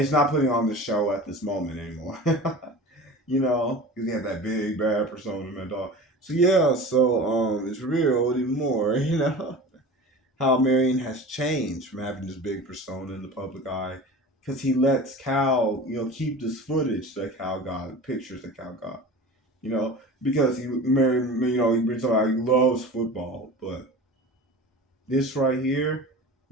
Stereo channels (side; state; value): both; normal; correlation 0.35